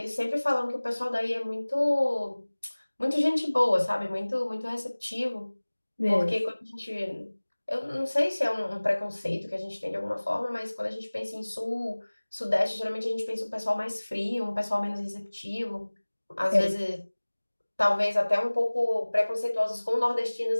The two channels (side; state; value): both; inverted; correlation -1.00